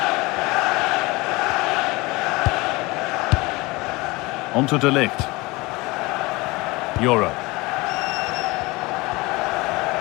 On to de Ligt. Euro.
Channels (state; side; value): quieter; right; 23.1 dB